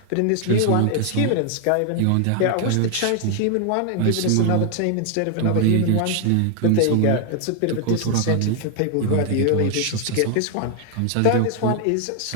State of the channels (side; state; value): both; different; correlation 0.00